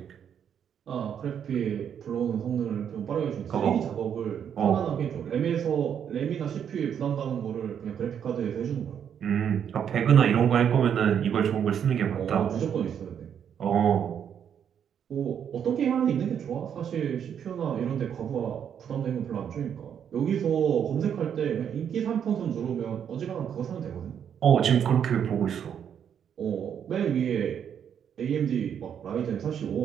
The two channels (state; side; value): quieter; left; 8.4 dB